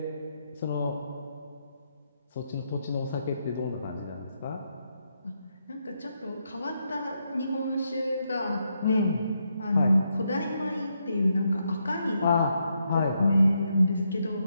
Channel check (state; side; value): inverted; both; correlation -0.80